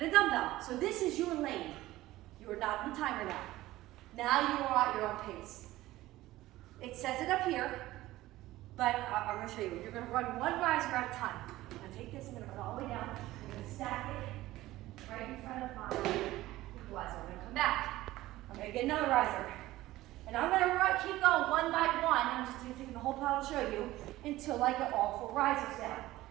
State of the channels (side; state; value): left; quieter; 16.7 dB